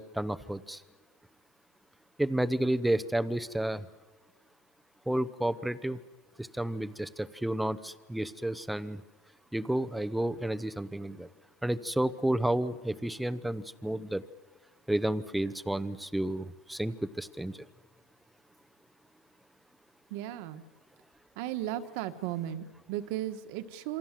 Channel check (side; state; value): both; normal; correlation 0.89